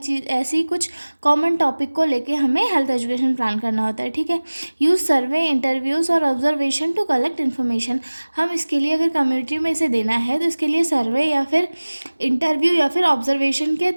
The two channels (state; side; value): inverted; both; correlation -1.00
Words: ऐसी कुछ कॉमन टॉपिक को लेके हमें हेल्थ एजुकेशन प्लान करना होता है। ठीक है, यूज़ सर्वे, इंटरव्यूज़ और ऑब्जर्वेशन टू कलेक्ट इन्फॉर्मेशन। हम इसके लिए अगर कम्युनिटी में इसे देना है तो इसके लिए सर्वे या फिर इंटरव्यू या फिर ऑब्जर्वेशन के